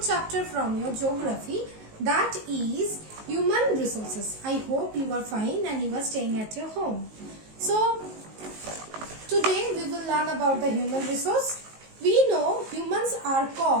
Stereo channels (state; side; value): late; left; 19 ms